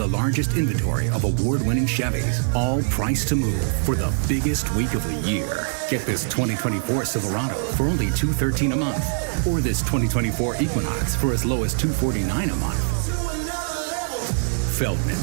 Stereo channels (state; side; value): silent; left; 63 dB below the other